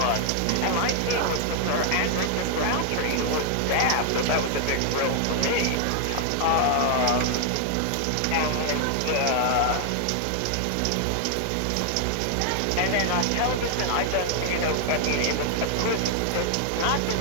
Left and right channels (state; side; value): different; both; correlation 0.00